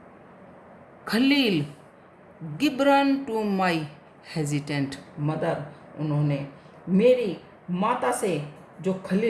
Khalil Gibran to my hesitant mother. उन्होंने मेरी माता से जो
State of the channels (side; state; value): both; identical; correlation 1.00